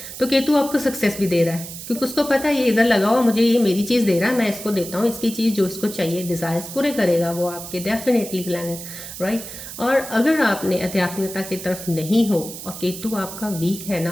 तो केतु आपको सक्सेस भी दे रहा है, क्योंकि उसको पता है ये इधर लगा हुआ, मुझे ये मेरी चीज़ दे रहा है, मैं इसको देता हूँ, इसकी चीज़ जो इसको चाहिए, डिज़ायर्स पूरे करेगा वो आपके, डेफिनेटली प्लैनेट, राइट। और अगर आपने आध्यात्मिकता की तरफ नहीं हो और केतु आपका वीक है ना,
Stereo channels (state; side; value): noise; right; hiss, 11 dB below the sound